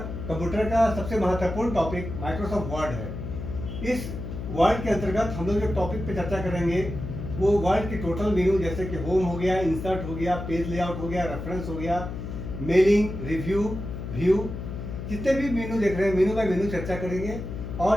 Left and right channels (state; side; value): noise; left; hum, 7 dB below the sound